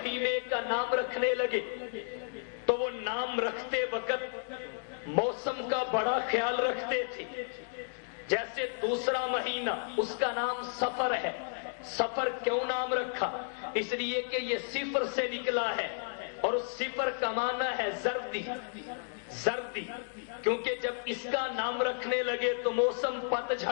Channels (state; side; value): silent; right; digital silence